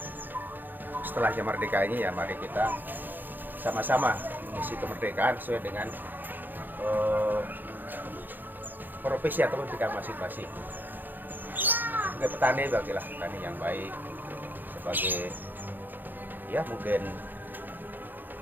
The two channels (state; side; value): late; left; 0.089 ms